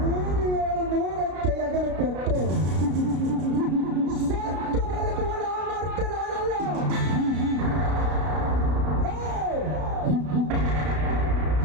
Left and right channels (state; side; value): late; left; 33 ms